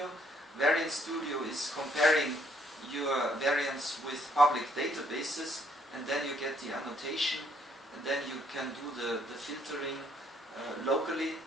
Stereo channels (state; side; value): normal; both; correlation 0.68